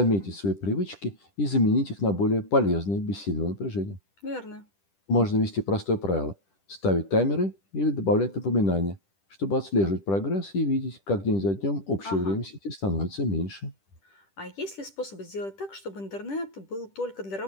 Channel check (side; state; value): right; late; 10 ms